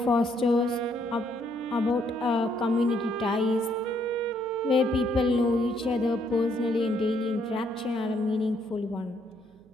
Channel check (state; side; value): noise; right; hum, 30 dB below the sound